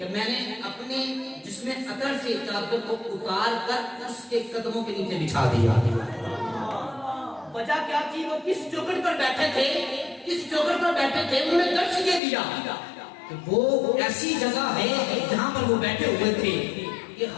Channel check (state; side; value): drops out; right; at 12.2 s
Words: میں نے اپنے جسم اطہر سے چادر کو اتار کر اس کے قدموں کے نیچے بچھا دیا۔ وجہ کیا تھی؟ وہ کس چوکھٹ پر بیٹھے تھے، کس چوکھٹ پر بیٹھے تھے، انہوں نے درس یہ دیا کہ وہ ایسی جگہ ہے جہاں پر وہ بیٹھے ہوئے تھے کہ